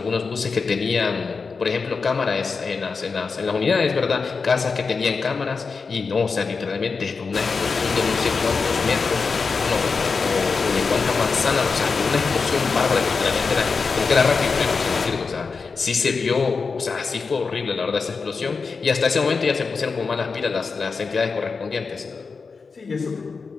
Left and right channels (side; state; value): right; quieter; 4.8 dB